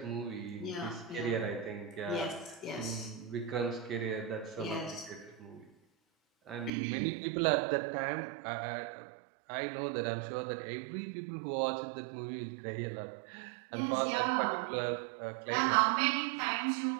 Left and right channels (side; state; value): left; drops out; at 6.7 s